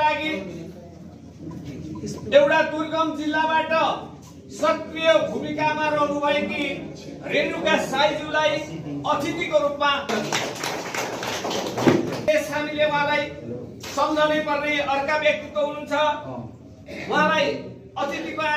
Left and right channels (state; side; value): identical; both; correlation 1.00